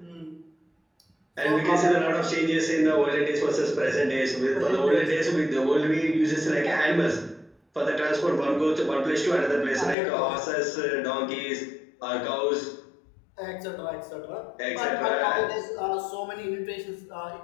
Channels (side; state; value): right; drops out; at 10.0 s